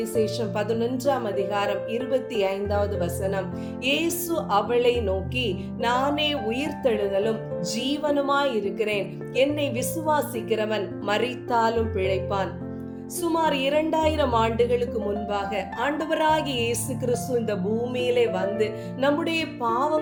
11ஆம் அதிகாரம் 25வது வசனம். இயேசு அவளை நோக்கி, நானே உயிர்த்தெழுதலும் ஜீவனுமாய் இருக்கிறேன். என்னை விசுவாசிக்கிறவன் மரித்தாலும் பிழைப்பான். சுமார் 2000 ஆண்டுகளுக்கு முன்பாக ஆண்டவராகிய இயேசு கிறிஸ்து இந்த பூமியிலே வந்து நம்முடைய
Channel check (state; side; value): identical; both; correlation 1.00